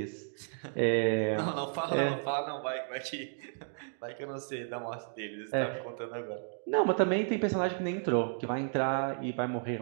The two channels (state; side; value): silent; left; digital silence